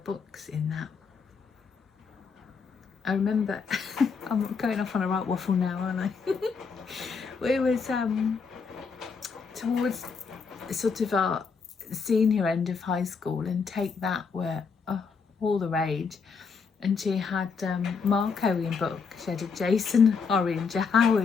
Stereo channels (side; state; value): right; quieter; 5.4 dB